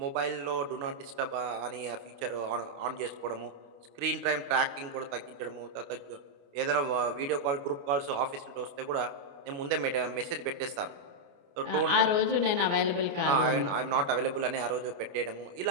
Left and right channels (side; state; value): left; late; 29 ms